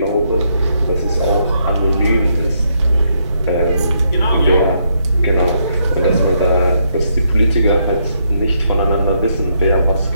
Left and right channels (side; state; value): both; inverted; correlation -0.75